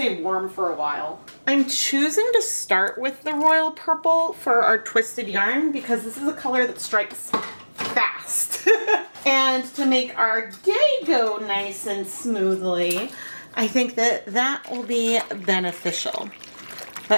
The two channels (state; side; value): inverted; both; correlation -1.00